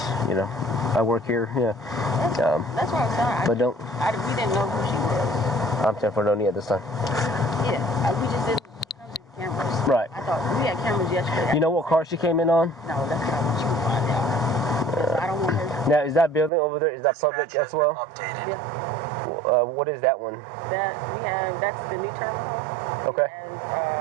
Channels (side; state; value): left; drops out; at 16.5 s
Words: I work here. Yeah. That's what I'm saying. But don't. We didn't know who she was. I'm saying for no need at this time. Yeah, we just didn't know the cameras. Right. I thought we had cameras yesterday. You know what car she came in on? No, that's what I want you to find out. 'Cause I don't want her. Now, is that building over there? Is that public as well? Yeah. What is that one? That's the new terminal. Okay. And